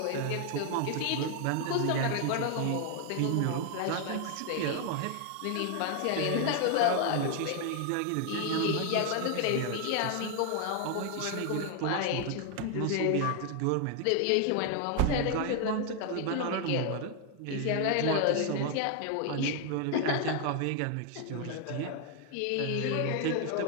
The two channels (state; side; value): different; both; correlation 0.00